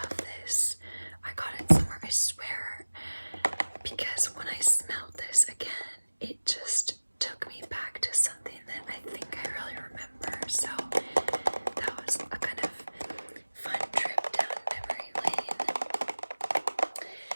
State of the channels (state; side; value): inverted; both; correlation -1.00